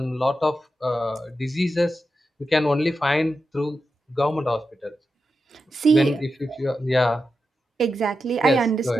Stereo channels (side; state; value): both; normal; correlation 0.89